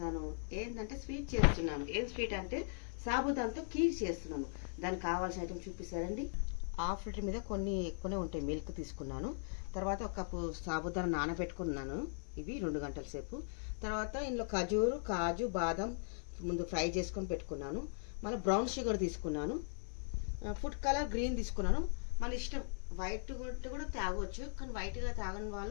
ఏంటంటే స్వీట్ చేస్తున్నాను. ఏం స్వీట్ అంటే సాబుదాంతో కీర్ చేస్తున్నాను. దానికి కావాల్సిన ఐటమ్ చూపిస్తారండి. హాఫ్ లీటర్ మీద కొన్ని ఎక్కువనే ఉంటాయి. మిల్క్ తీసుకున్నాను. తర్వాత ఒక కప్పు సాబుదాన నానబెట్టుకున్నాను. ఇవి 2 గంటల సేపు. తర్వాత ఇందులో కాజు బాదం ముందు ఫ్రై చేసుకొని పెట్టుకున్నాను. మళ్ళీ బ్రౌన్ షుగర్ తీసుకున్నాను. ఫుడ్ కలర్ గ్రీన్ తీసుకున్నాను. మన ఇష్టం, వైట్ కూడా తాగవచ్చు, కానీ వైట్గా తాగని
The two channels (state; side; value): silent; right; digital silence